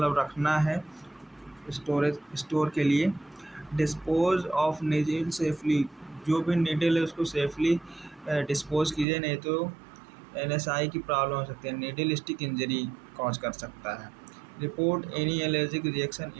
रखना है स्टोर के लिए। डिस्पोज ऑफ नीडल सेफली, जो भी नीडल है उसको सेफली डिस्पोज कीजिए, नहीं तो NSI की प्रॉब्लम हो सकती है, नीडल स्टिक इंजरी कॉज कर सकता है। Report any allergic reaction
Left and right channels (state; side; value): drops out; left; at 9.1 s